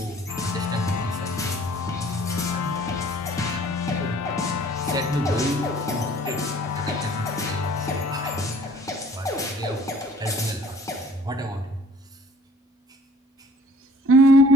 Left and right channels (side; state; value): both; normal; correlation 0.53